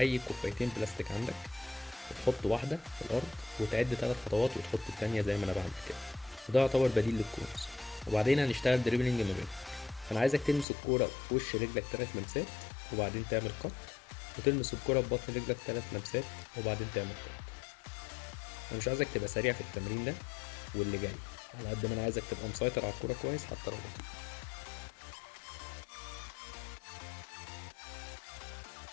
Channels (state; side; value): drops out; right; at 10.7 s